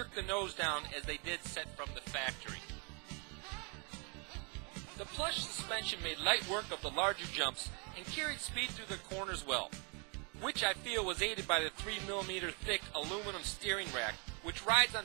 the nose down as they did set from the factory. The plush suspension made light work of the larger jumps and carried speed through the corners well, which I feel was aided by the 3mm thick aluminum steering rack, which rides on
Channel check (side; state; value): left; quieter; 34.7 dB